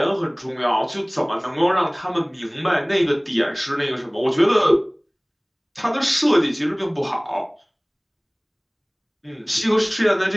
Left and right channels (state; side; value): identical; both; correlation 1.00